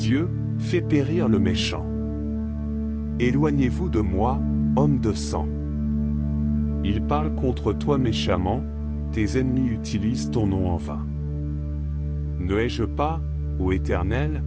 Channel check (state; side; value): identical; both; correlation 1.00